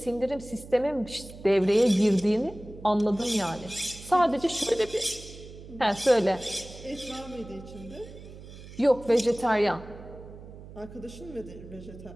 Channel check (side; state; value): right; noise; hum, 16 dB below the sound